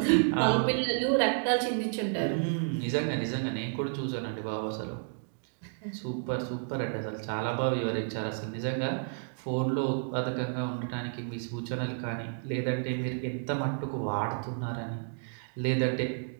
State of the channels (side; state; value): left; silent; digital silence